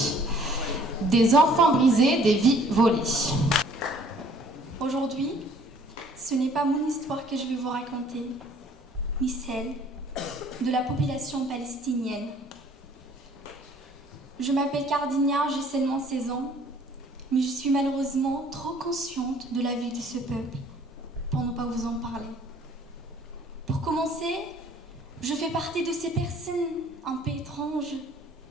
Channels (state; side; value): normal; both; correlation 0.56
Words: Des enfants brisés, des vies volées. Aujourd'hui, ce n'est pas mon histoire que je vais vous raconter, ni celle de la population palestinienne. Je m'appelle Cardina, j'ai seulement 16 ans, mais je suis malheureusement trop consciente de la vie de ce peuple pour ne pas vous en parler. Pour commencer, je fais partie de ces personnes un peu étranges